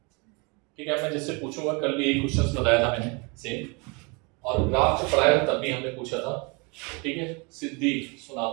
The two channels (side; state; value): left; quieter; 30.5 dB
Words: ठीक है, मैं जिससे पूछूंगा, कल भी यही क्वेश्चन बताया था मैंने सेम, और ग्राफ जो पढ़ाया तब भी हमने पूछा था। ठीक है, सिद्धि